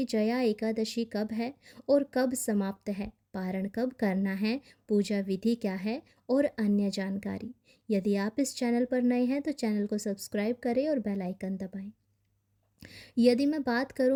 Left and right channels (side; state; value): both; identical; correlation 1.00